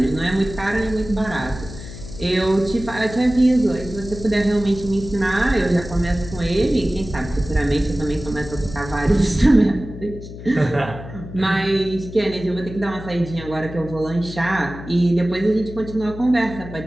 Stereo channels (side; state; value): left; noise; hum, 12 dB below the sound